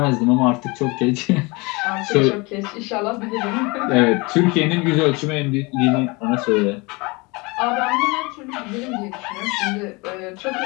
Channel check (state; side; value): quieter; right; 26.3 dB